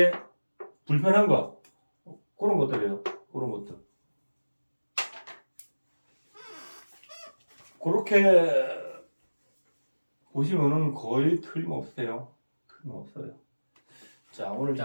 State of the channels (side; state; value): both; inverted; correlation -1.00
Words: 불편한 거 그런 것들이에요. 그런 것들. 그렇게 보시면은 거의 틀림없어요. 자, 오늘